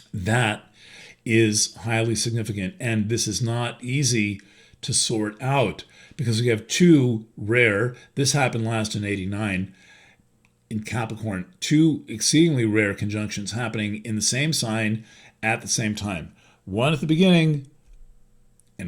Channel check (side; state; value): both; identical; correlation 1.00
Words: That is highly significant, and this is not easy to sort out because we have two rare, this happened last in 89 in Capricorn, two exceedingly rare conjunctions happening in the same sign at the same time. One at the beginning